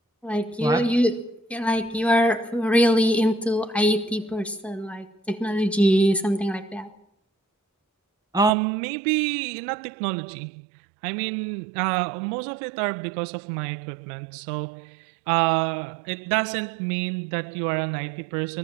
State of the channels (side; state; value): left; drops out; at 8.5 s